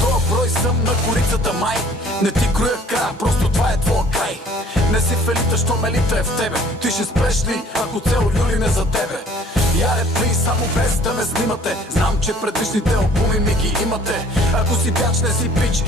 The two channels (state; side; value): normal; both; correlation 0.53